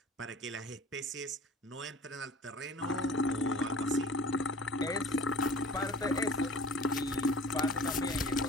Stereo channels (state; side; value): normal; both; correlation 0.44